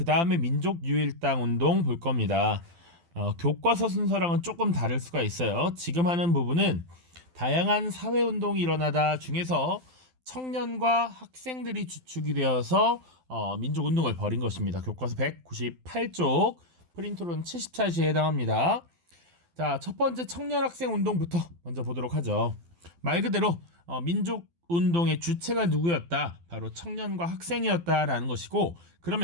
다음에 민족 유일당 운동 볼 겁니다. 교과서 순서랑은 조금 다를 수가 있어요. 지금 하는 부분은 다양한 사회 운동이 일어나다 중에서 청년과 학생들이 주축이 되어서 민족 운동을 벌인 것입니다. 교과서 198쪽 프린트로는 70차시에 해당합니다. 자, 첫 번째 청년 학생 운동부터 먼저 보도록 하죠. 말 그대로 민족 운동의 주체가 누구였다? 바로 청년과 학생이었다라는 것이고,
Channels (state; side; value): late; left; 12 ms